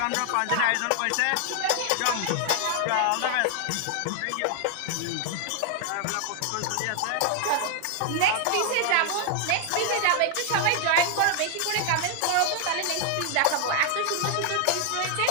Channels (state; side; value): different; both; correlation 0.00